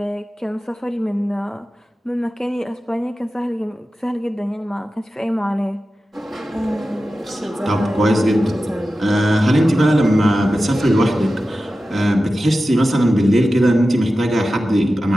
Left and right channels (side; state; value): both; normal; correlation 0.93